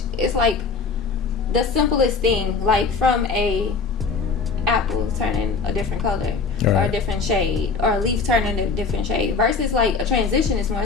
it's like the simplest thing, from a apple turning a different color, or a different shade, or a leaf turning a different shade, versus a transition is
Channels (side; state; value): right; quieter; 4.8 dB